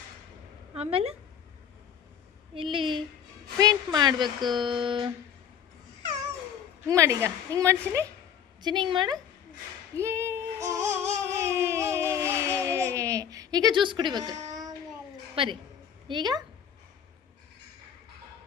ಆಮೇಲೆ ಇಲ್ಲಿ ಪೇಂಟ್ ಮಾಡಬೇಕು. ಹಿಂಗೆ ಮಾಡಿ, ಈಗ ಹಿಂಗೆ ಮಾಡ್ತೀನಿ ಚಿನ್ನಿ, ಹಿಂಗೆ ಮಾಡು. ಏ ಈಗ ಜ್ಯೂಸ್ ಕುಡಿಬೇಕು ಬರೀ. ಈಗ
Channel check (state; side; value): quieter; right; 8.6 dB